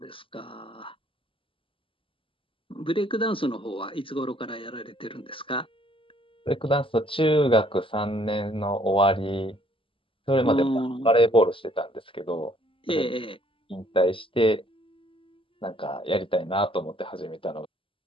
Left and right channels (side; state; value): right; late; 0.26 ms